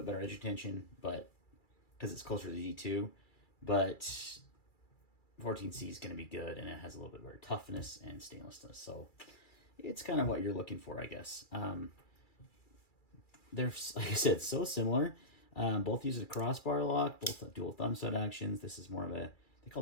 better edge retention, but because it's closer to the D2, but 14C is going to be good, and it has a little bit better toughness and stainlessness. So it's kind of what you're looking for, I guess. They're, like I said, so similar. Both use a crossbar lock, both dual thumb stud actions. This is more of they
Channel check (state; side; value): late; right; 2.3 ms